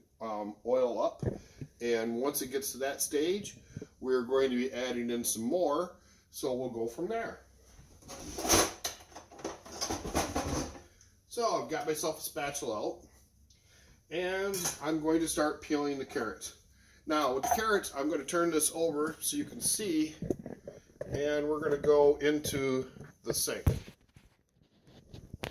oil up. And once it gets to that stage, we're going to be adding in some more. So we'll go from there. So I've got myself a spatula out. And I'm going to start peeling the carrots. Now with the carrots, I'm going to turn this over so you can see. And we're going to go into the sink.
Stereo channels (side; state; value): both; identical; correlation 1.00